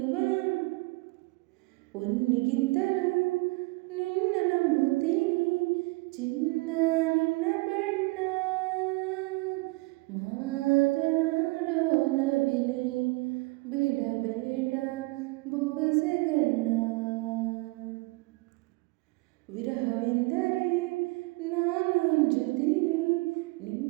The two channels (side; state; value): left; quieter; 25.0 dB